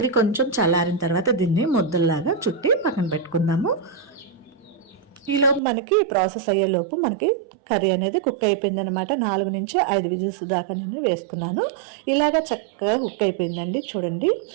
కొంచెం చల్లారిన తర్వాత దీన్ని ముద్దల్లాగా చుట్టి పక్కన పెట్టుకుందాము. ఈలోపు మనకి ప్రాసెస్ అయ్యేలోపు మనకి కర్రీ అనేది కుక్ అయిపోయింది అనమాట. 4 నుంచి 5 విజిల్స్ దాకా నేను వేసుకున్నాను. ఇలాగా చక్కగా కుక్ అయిపోయిందండి. చూడండి,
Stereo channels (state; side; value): drops out; left; at 5.6 s